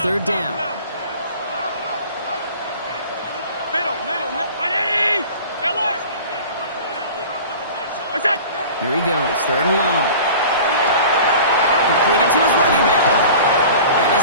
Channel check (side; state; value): both; inverted; correlation -0.41